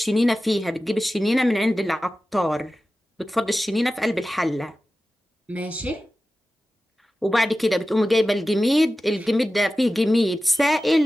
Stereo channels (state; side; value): normal; both; correlation 0.95